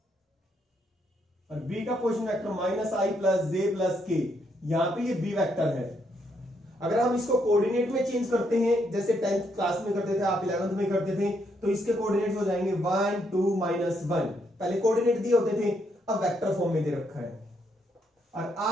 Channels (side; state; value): both; normal; correlation 0.75